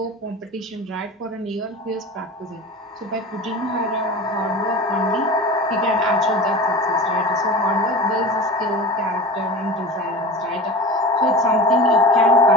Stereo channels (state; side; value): normal; both; correlation 0.33